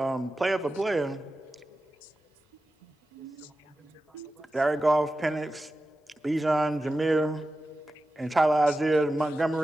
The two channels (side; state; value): both; normal; correlation 0.93